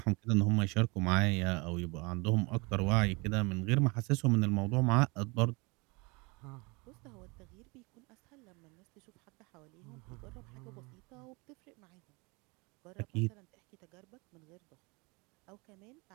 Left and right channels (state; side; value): quieter; left; 27.9 dB